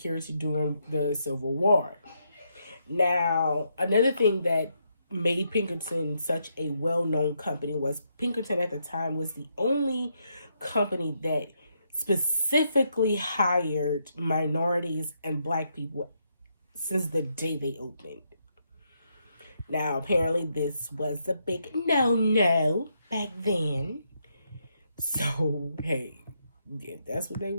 during the Civil War. Now, another thing that made Pinkerton such a well-known company was Pinkerton at the time was the only company that specifically hired minorities and black people since the day they opened. Now, apparently this was a big no-no back then. So, hey, if that's what they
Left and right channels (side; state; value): both; inverted; correlation -0.78